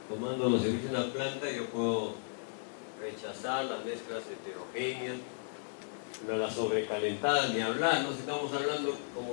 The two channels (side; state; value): right; silent; digital silence